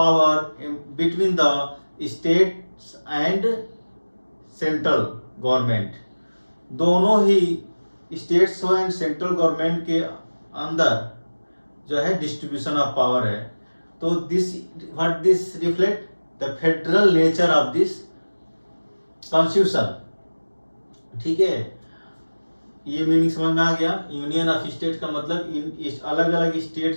between the states and central government. दोनों ही states and central government के अंदर जो है distribution of power है। तो this what this reflect the federal nature of this constitution, ठीक है। ये मीनिंग समझ में आ गया। यूनियन ऑफ स्टेट का मतलब इन अलग अलग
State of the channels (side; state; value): both; inverted; correlation -1.00